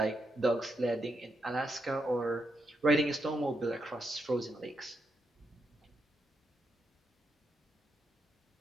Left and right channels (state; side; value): normal; both; correlation 0.81